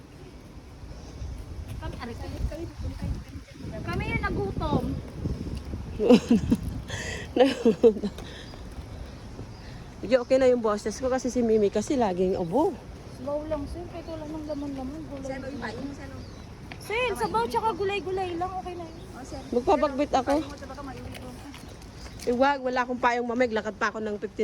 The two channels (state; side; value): identical; both; correlation 1.00